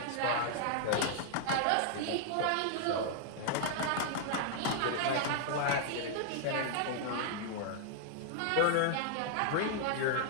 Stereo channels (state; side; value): different; both; correlation -0.01